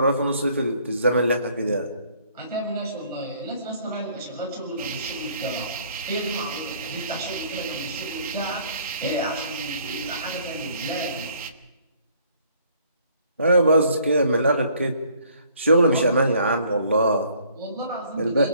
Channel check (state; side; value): inverted; both; correlation -0.60